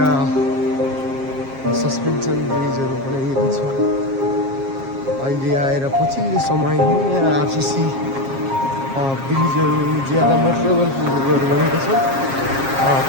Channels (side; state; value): left; late; 7.4 ms